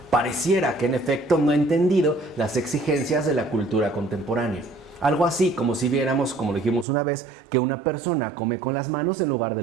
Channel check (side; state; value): left; drops out; at 6.9 s